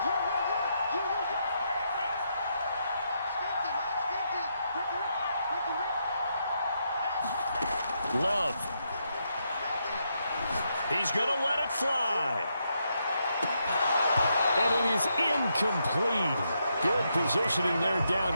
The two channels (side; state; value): both; inverted; correlation -0.80